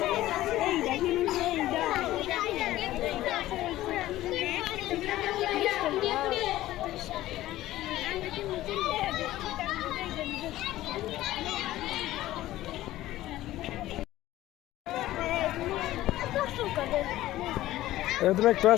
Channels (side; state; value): right; quieter; 15.4 dB